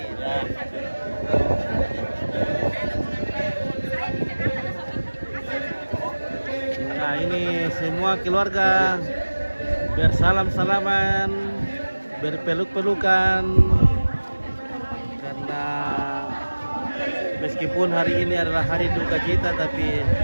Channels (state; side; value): inverted; both; correlation -1.00